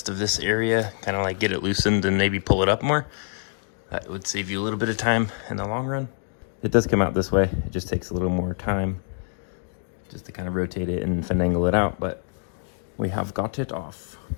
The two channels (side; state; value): right; silent; digital silence